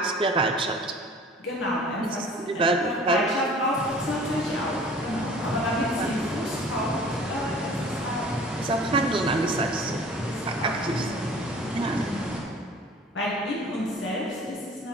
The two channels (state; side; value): normal; both; correlation 0.47